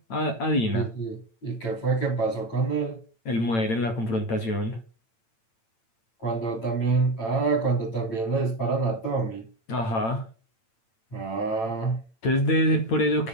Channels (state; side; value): late; right; 8.9 ms